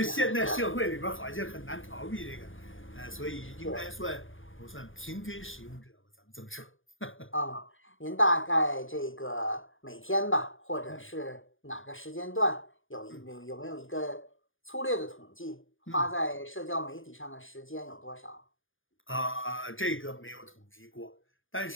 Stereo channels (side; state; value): right; late; 0.58 ms